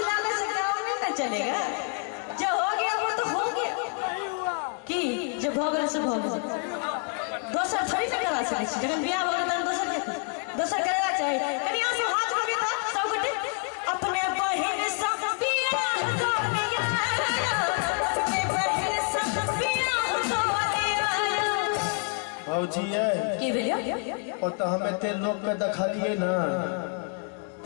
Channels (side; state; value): right; quieter; 35.8 dB